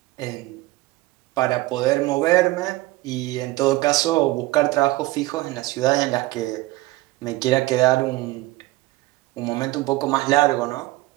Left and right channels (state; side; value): quieter; left; 19.2 dB